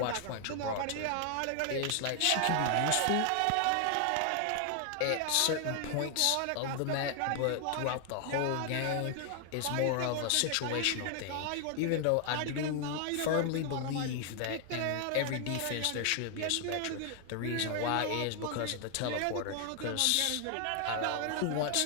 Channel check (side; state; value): both; different; correlation 0.00